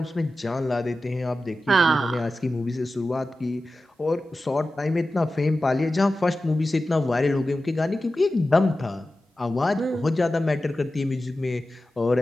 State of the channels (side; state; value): both; normal; correlation 0.94